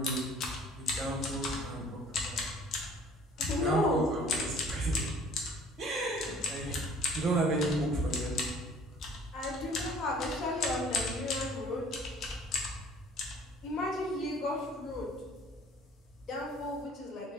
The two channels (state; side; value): normal; both; correlation 0.53